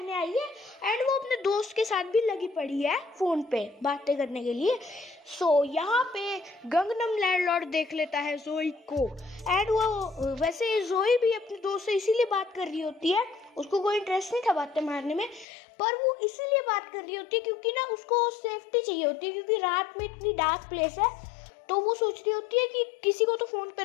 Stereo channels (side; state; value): right; drops out; at 15.5 s